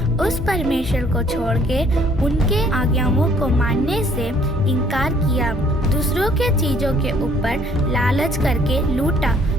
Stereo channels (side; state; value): both; normal; correlation 0.61